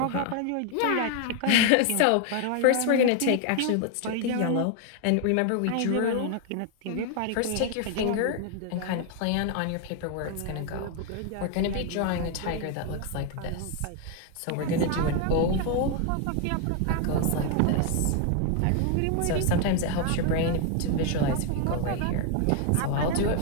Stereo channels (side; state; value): both; different; correlation 0.01